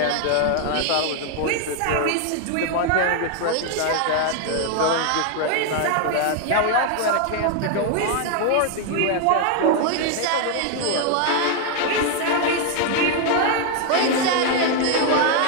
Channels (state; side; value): different; both; correlation 0.00